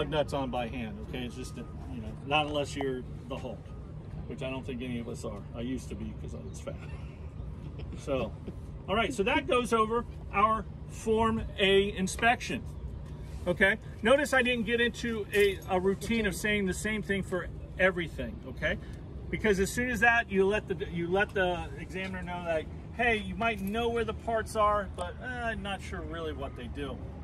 nuts on by hand. Okay, it's just, you know, not unless you're the Hulk, which I don't think any of us are. I used to be because I was fat. So, all right, so that goes over our Form A inspection. Okay, notice I didn't get into a routine of saying the same thing for everything. Okay, because as soon as that, you let the examiner know that, hey, you might know where the parts are, but I'm not sure really what they do.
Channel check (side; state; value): both; identical; correlation 1.00